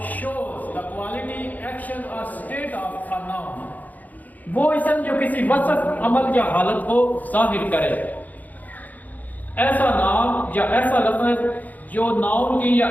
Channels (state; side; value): late; right; 0.080 ms